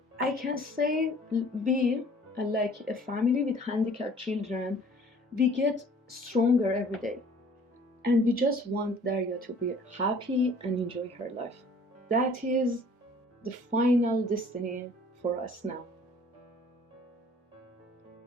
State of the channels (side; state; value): both; normal; correlation 0.53